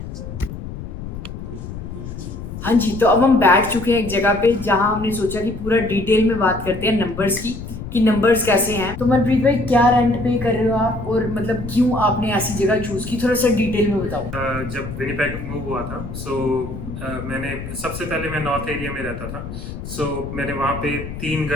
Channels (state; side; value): noise; left; rumble, 10 dB below the sound